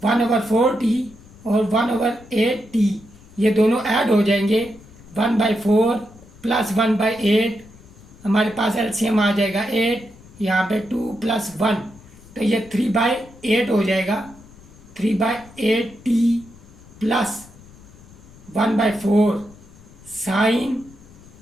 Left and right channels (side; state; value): left; noise; rumble, 22 dB below the sound